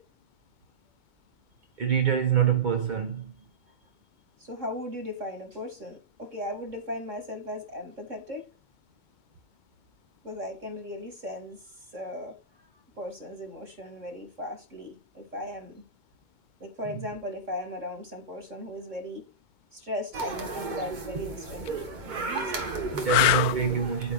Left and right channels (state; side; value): late; left; 2.2 ms